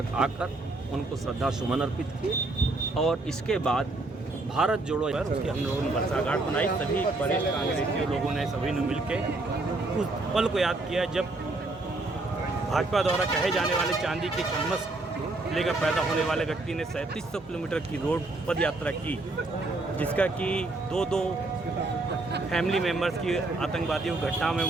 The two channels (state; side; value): quieter; left; 3.0 dB